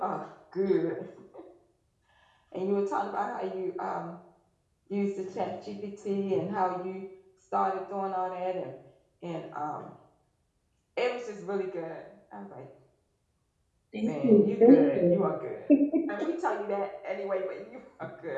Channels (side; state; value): both; identical; correlation 1.00